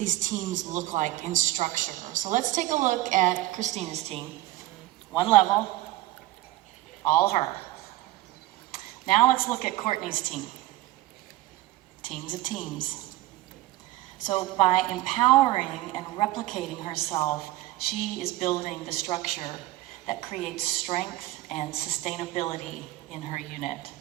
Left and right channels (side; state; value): left; quieter; 16.7 dB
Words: teams look like in structure. So let's take a look at Christina's team. One level, all her. Now let's look at Courtney's team. Teams of teams. So by empowering and replicating herself, she is building the structure that creates strength and sustainability in her unit.